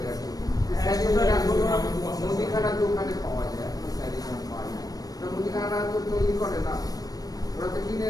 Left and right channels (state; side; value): late; right; 0.18 ms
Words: গেছে। স্যাডিডন এখন মুদিখানার দোকানে পাওয়া যায়, স্যাডিডন পাওয়া যায়। তো মুদিখানা তো তৈরি করে না, ওরা তো কিনে